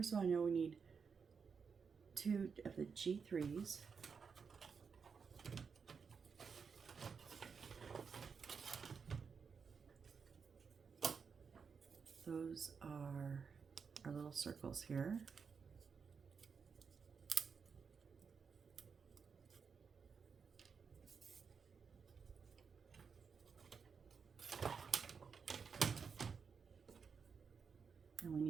of all, I know we need 2 of the G3s. Those are our little circles here. And we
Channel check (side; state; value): left; quieter; 5.8 dB